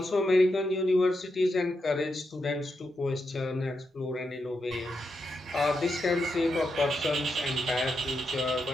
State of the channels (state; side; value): normal; both; correlation 0.84